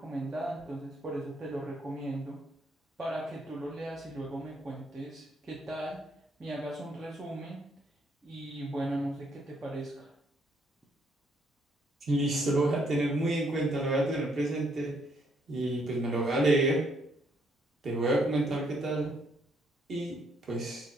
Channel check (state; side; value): normal; both; correlation 0.71